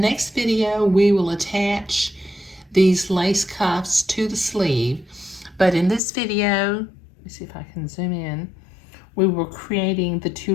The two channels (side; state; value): right; drops out; at 6.0 s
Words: video, we will attach these lace cuffs to the sleeve. But in this video, let me see if I can zoom in, we were creating the two